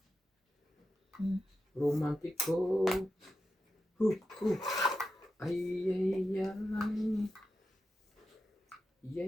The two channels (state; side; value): normal; both; correlation 0.89